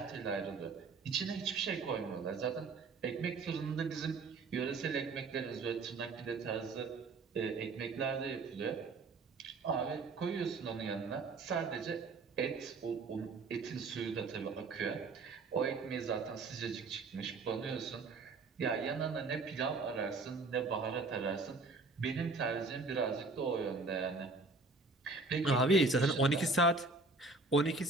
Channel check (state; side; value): quieter; left; 3.7 dB